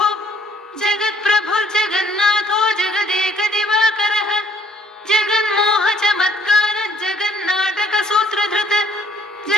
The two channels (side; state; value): both; normal; correlation 0.62